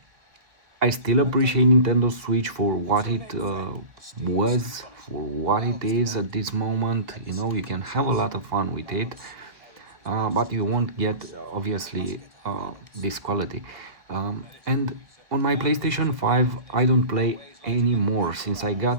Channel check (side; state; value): left; late; 1.4 ms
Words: still appreciate Nintendo Switch for what it was, for what it is at this moment. You know, you can have a lot of fun with it. But you won't get obviously this quality. And on my PlayStation 5 I don't play anymore. Since I